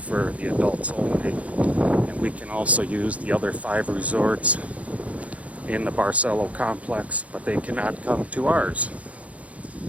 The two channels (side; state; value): left; late; 0.066 ms